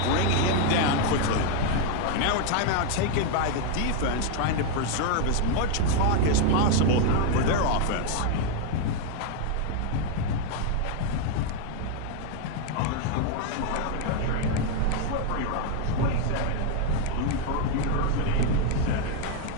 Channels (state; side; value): different; both; correlation 0.00